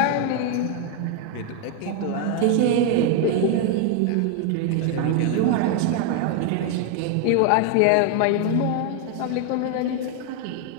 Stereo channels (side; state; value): both; different; correlation 0.01